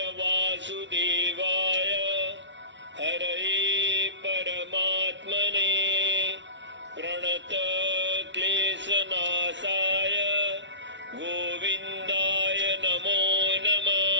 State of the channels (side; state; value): left; late; 0.53 ms